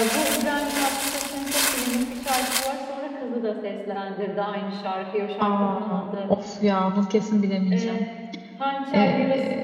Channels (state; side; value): identical; both; correlation 1.00